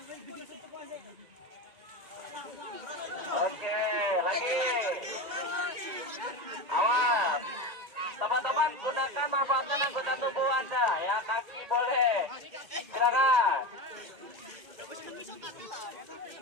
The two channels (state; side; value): late; left; 2.0 ms